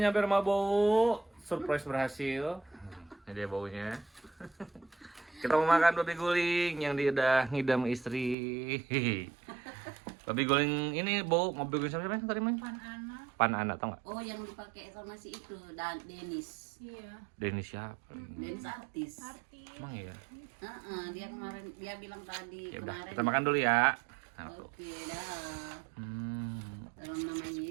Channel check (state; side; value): drops out; left; at 8.3 s